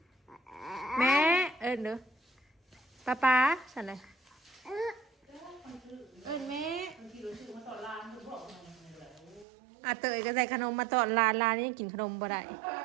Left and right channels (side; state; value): left; drops out; at 9.5 s